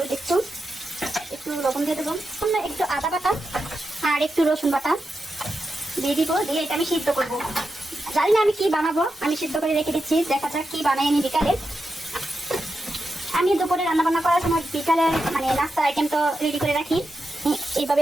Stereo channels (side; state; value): both; normal; correlation 0.88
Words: একটু লবণ দিয়ে দেবো, একটু আদা বাটা আর একটু রসুন বাটা দিয়ে দিব। দিয়ে এটা আমি সিদ্ধ করবো। জানি না আমি কি বানাবো, আমি সিদ্ধ করে রেখে দিচ্ছি, দেখা যাক কি বানাই আমি বিকালে। আমি দুপুরে রান্না বান্না করার সময় বিকালে মানে নাস্তার আইটেম তো রেডি করে রাখি,